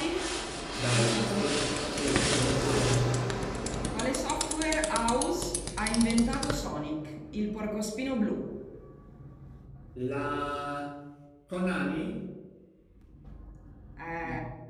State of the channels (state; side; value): identical; both; correlation 1.00